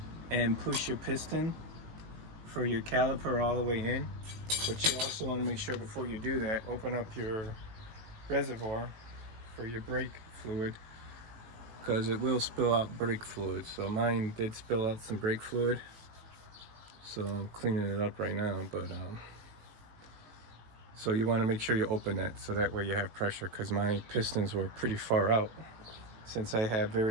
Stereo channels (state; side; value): late; left; 18 ms